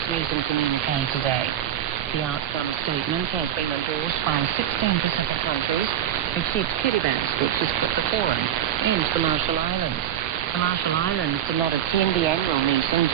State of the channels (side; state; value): left; quieter; 10.7 dB